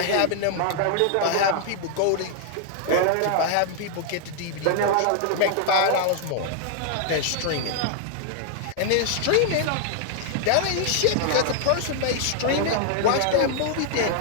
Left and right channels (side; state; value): both; different; correlation -0.01